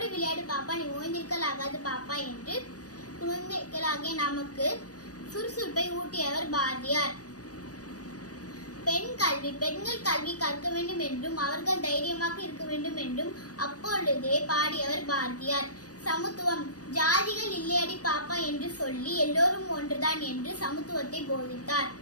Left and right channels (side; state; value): right; late; 0.67 ms